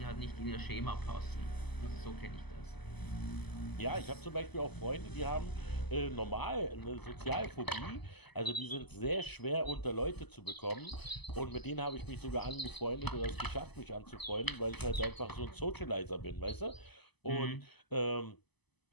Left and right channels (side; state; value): right; late; 0.99 ms